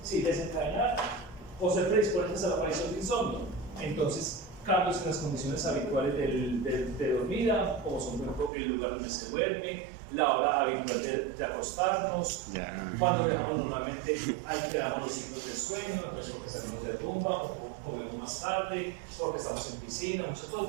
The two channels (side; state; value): left; drops out; at 8.5 s